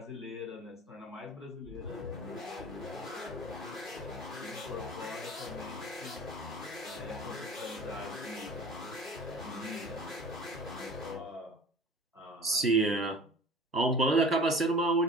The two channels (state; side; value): normal; both; correlation 0.41